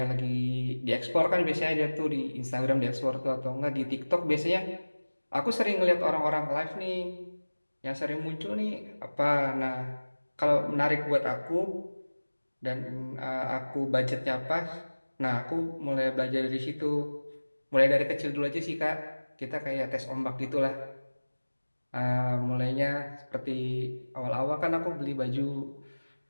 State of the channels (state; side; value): inverted; both; correlation -1.00